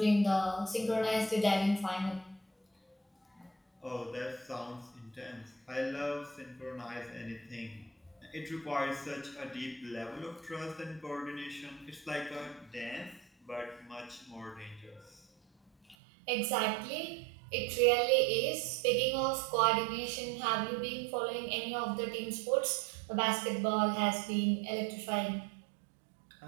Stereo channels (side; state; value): left; drops out; at 16.0 s